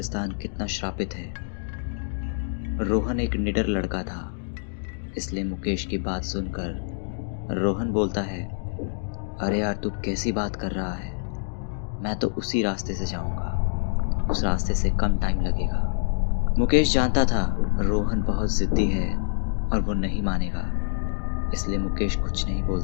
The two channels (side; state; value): right; silent; digital silence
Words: कितना श्रापित है। रोहन एक निडर लड़का था, इसलिए मुकेश की बात सुनकर रोहन बोलता है, अरे यार तू कैसी बात कर रहा है, मैं तो उसी रास्ते से जाऊंगा, उस रास्ते से कम टाइम लगेगा। मुकेश जानता था रोहन बहुत जिद्दी है और वो नहीं मानेगा, इसलिए मुकेश कुछ नहीं